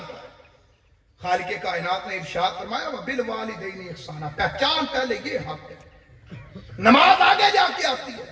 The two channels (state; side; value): identical; both; correlation 1.00